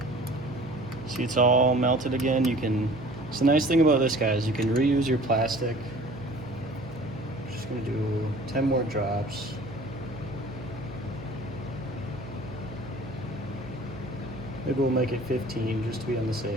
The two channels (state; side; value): noise; right; hum, 14 dB below the sound